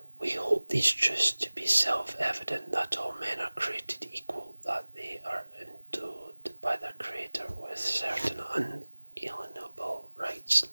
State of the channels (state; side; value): inverted; both; correlation -1.00